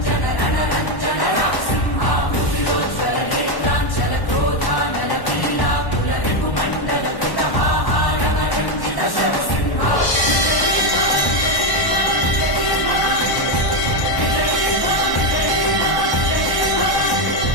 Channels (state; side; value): late; right; 1.1 ms